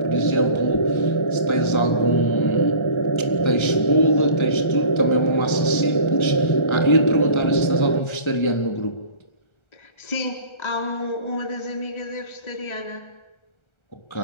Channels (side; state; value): right; late; 1.3 ms